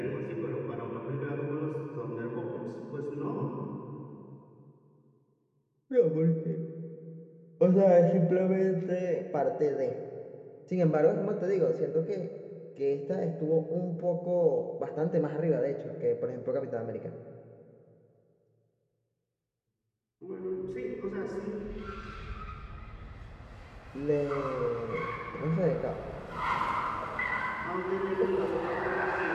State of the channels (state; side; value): identical; both; correlation 1.00